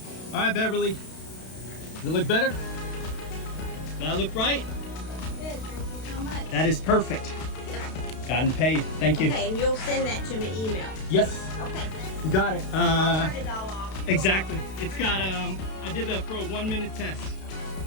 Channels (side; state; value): right; late; 32 ms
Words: All right, Beverly, does it look better? Does that look right? Good, thank you so much. That is perfect. Yep. Gotten paid. Thank you. Okay, and you'll send that to me email. Yes. Okay. You got it. I'll turn it all off. Exactly. It's got, I did that for a 1-minute test.